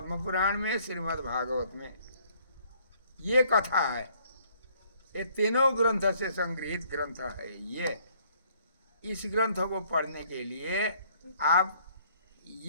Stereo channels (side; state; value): both; inverted; correlation -0.63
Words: पुराण में, श्रीमद् भागवत में ये कथा है। ये तीनों ग्रंथ से संग्रहित ग्रंथ है। ये इस ग्रंथ को पढ़ने के लिए आप